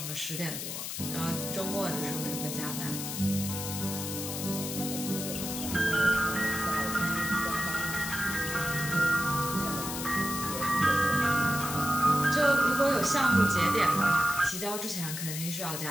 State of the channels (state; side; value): noise; left; hiss, 5 dB below the sound